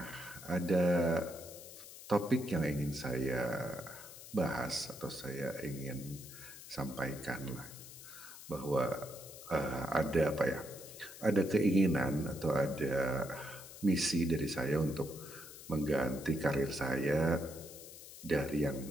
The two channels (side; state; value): left; noise; hiss, 15 dB below the sound